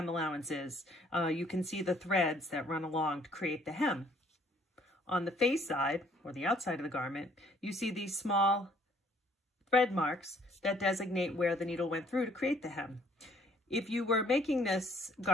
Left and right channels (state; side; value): normal; both; correlation 0.61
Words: allowance is, you can see the threads that run along to create the hem. On the face side, or the outside of the garment, you see these small thread marks that designate where the needle went through to create the hem. If you were making this